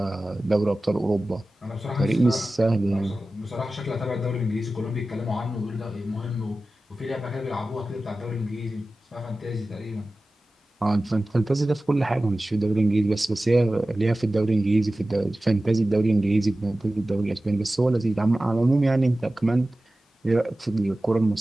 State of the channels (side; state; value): both; normal; correlation 0.96